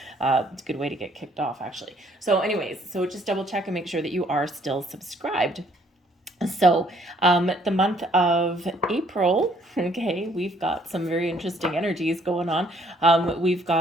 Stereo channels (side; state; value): both; normal; correlation 0.64